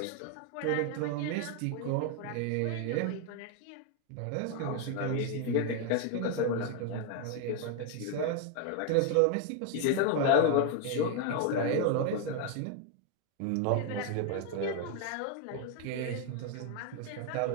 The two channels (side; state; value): both; different; correlation 0.01